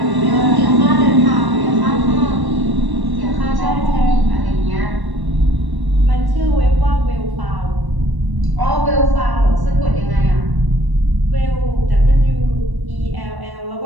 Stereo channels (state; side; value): late; left; 1.1 ms